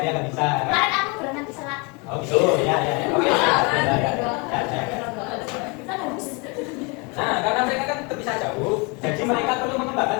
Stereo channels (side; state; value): right; quieter; 30.1 dB